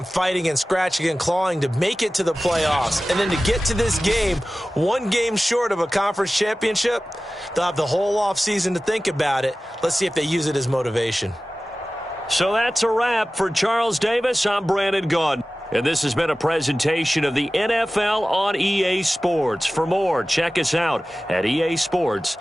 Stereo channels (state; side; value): normal; both; correlation 0.96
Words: fighting and scratching and clawing to make it to the playoffs. And then to get to this game, one game short of a conference championship, they'll have the whole offseason to think about it. Let's see if they use it as motivation. So that's a wrap for Charles Davis. I'm Brandon Gaudin. And this has been a presentation of the NFL on EA Sports. For more, check us out at